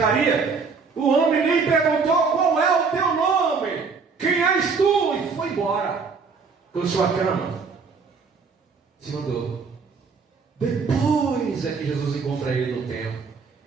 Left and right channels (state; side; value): quieter; left; 5.0 dB